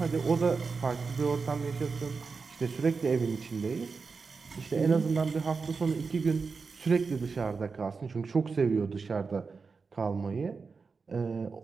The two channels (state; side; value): quieter; left; 4.8 dB